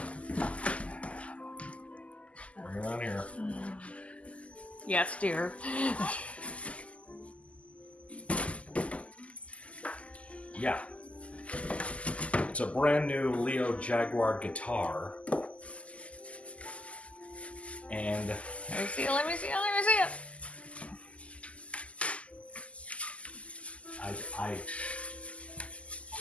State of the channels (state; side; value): late; right; 0.063 ms